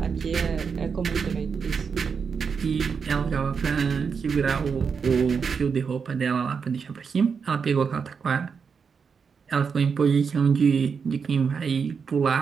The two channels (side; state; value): left; quieter; 6.0 dB